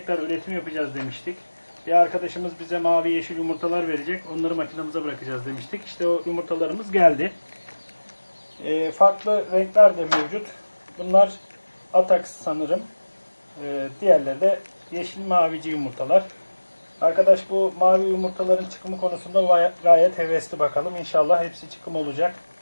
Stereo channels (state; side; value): inverted; both; correlation -1.00